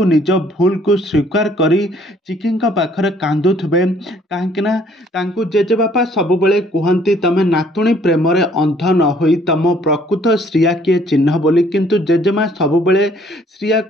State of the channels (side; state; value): both; normal; correlation 0.61